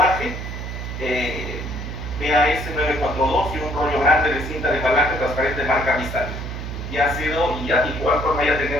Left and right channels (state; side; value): noise; right; hum, 7 dB below the sound